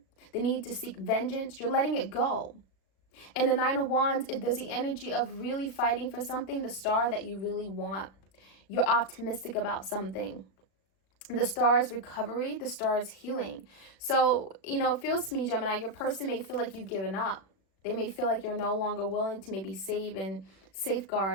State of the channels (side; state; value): right; late; 37 ms